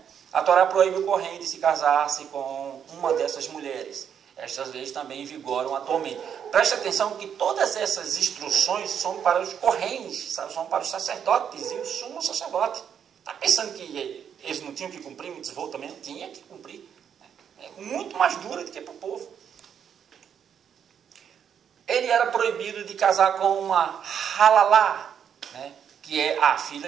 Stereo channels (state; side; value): quieter; left; 8.3 dB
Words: A Torá proíbe o Kohen de se casar-se com uma dessas mulheres. Estas leis também vigoram atualmente. Preste atenção que todas essas instruções são para os Kohens, são para os sacerdotes e o sumo sacerdote. Está pensando que eles não tinham que cumprir mitzvot também? Não tinha que cumprir. É muito mais dura do que para o povo. ele era proibido de casar com uma halalá, né, que é a